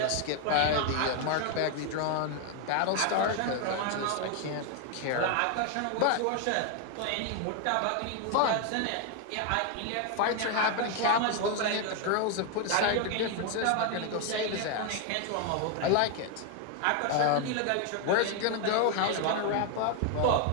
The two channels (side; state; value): both; different; correlation 0.01